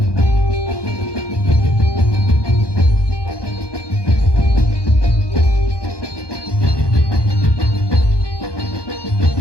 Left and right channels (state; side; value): late; right; 1.2 ms